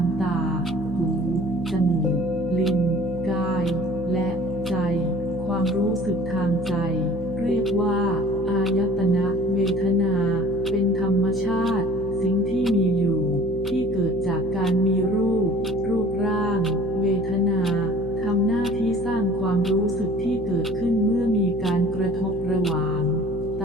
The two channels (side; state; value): left; noise; hum, 12 dB below the sound